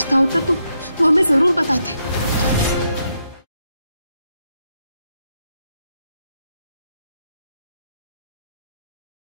होता तो वो हमें जरूर बताते।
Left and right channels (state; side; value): inverted; both; correlation -0.80